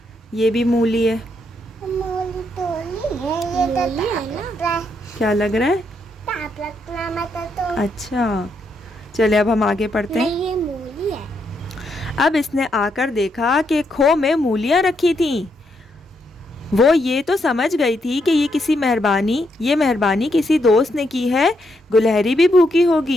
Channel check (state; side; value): normal; both; correlation 0.78